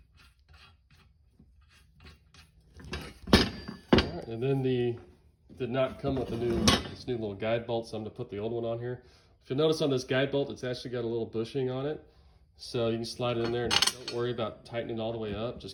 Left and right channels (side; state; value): both; identical; correlation 1.00